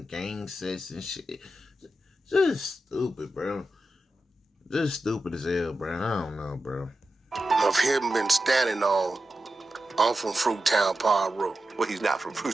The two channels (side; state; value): both; normal; correlation 0.91